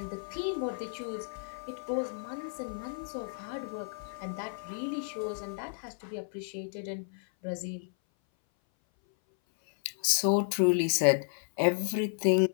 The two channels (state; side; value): silent; right; 56 dB below the other